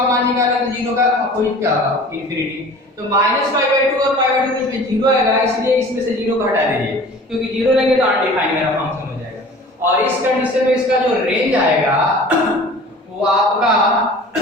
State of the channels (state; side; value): normal; both; correlation 0.43